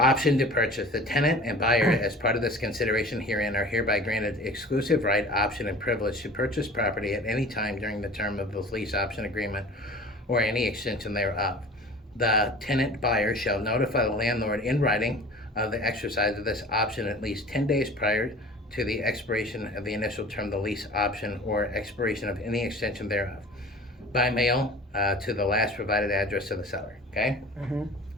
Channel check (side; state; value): both; normal; correlation 0.42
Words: to purchase. The tenant and buyer, as part of this consideration herein, are hereby granted exclusive right, option, and privilege to purchase property at any time during the term of the lease option agreement or any extension thereof. The tenant buyer shall notify the landlord in writing of the exercise of this option at least 10 days prior to the expiration of the initial term of the lease option or expiration of any extension thereof, by mail to the last provided address of the seller. Okay?